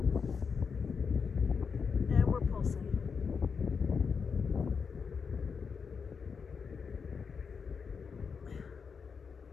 And we're pulsing.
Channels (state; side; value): quieter; right; 5.8 dB